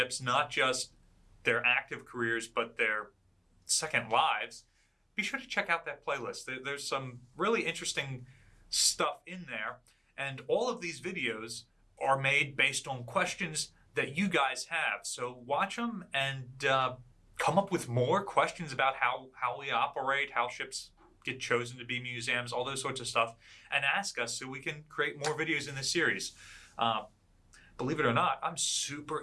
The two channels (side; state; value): both; identical; correlation 1.00